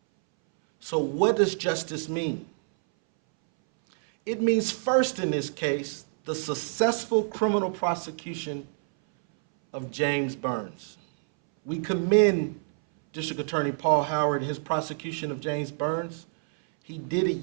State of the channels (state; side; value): silent; left; 60 dB below the other